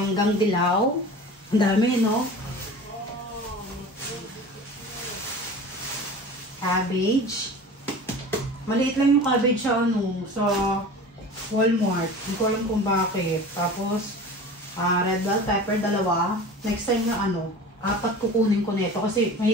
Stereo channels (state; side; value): normal; both; correlation 0.37